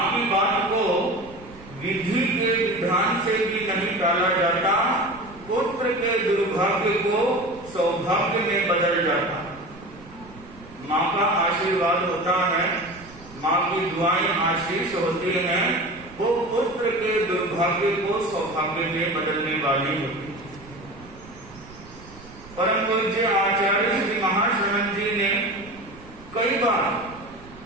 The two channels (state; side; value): noise; right; rumble, 20 dB below the sound